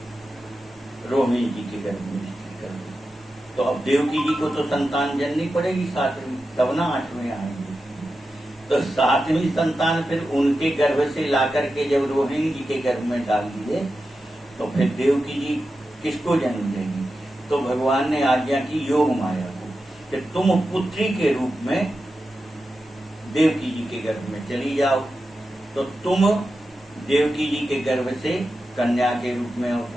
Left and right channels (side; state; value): both; normal; correlation 0.91